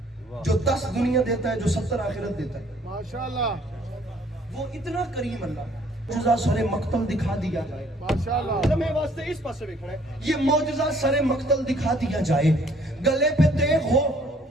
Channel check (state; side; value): normal; both; correlation 0.60